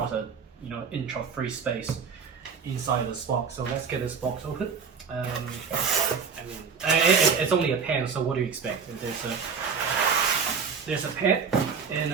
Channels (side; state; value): left; quieter; 6.0 dB